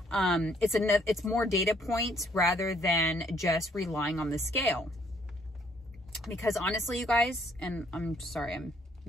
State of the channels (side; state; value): both; normal; correlation 0.65